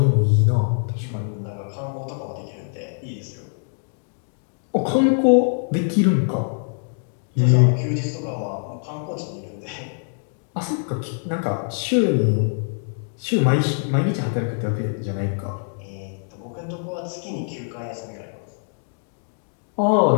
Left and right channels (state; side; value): silent; right; digital silence